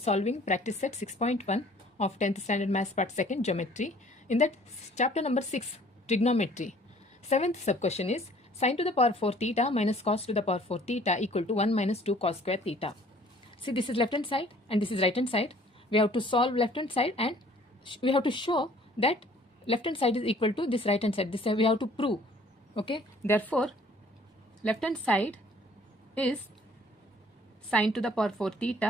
practice set 6.1 of 10th standard maths part 2nd geometry. In that chapter number 6 trigonometry. 7th sub question is sin to the power 4 theta minus cos to the power 4 theta equal to 1 minus 2 cos square theta. See, this is left hand side and this is right hand side. We have to solve left hand side and we have to show that left hand side is equal to this right hand side. This we have to prove. Okay, therefore left hand side is sin to the power 4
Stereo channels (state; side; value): normal; both; correlation 0.55